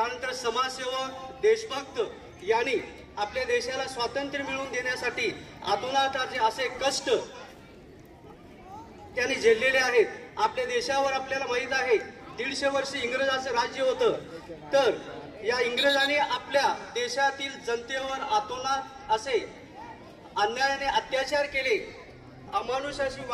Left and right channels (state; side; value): identical; both; correlation 1.00